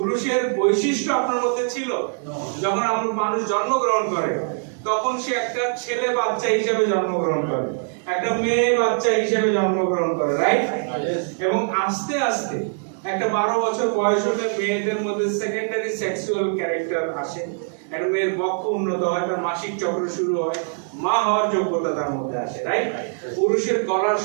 বৈশিষ্ট্য আপনার মধ্যে ছিল। যখন আপনার মানুষ জন্মগ্রহণ করে তখন সে একটা ছেলে বাচ্চা হিসেবে জন্মগ্রহণ করে, একটা মেয়ে বাচ্চা হিসেবে জন্মগ্রহণ করে, রাইট? এবং আস্তে আস্তে একটা 12 বছর বয়স হলে মেয়েদের মধ্যে সেকেন্ডারি সেক্সুয়াল ক্যারেক্টার আসে, একটা মেয়ের বক্ষ উন্নত হয়, তার মাসিক চক্র শুরু হয়, মা হওয়ার যোগ্যতা তার মধ্যে আসে, রাইট? পুরুষের গলার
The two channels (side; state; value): left; silent; 64 dB below the other